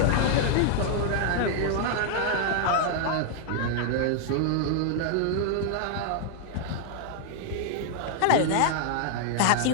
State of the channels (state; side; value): different; both; correlation 0.00